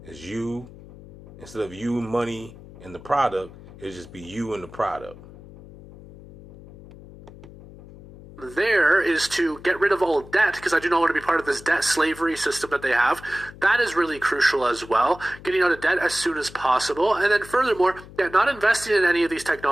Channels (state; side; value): noise; left; hum, 18 dB below the sound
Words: It's you, instead of you, money, and the product, it'll just be you and the product. There is to get rid of all debt, because I do not want to be part of this debt slavery system that they have. That is really crucial as well. Getting out of debt as soon as possible. And then furthermore, not investing in any of these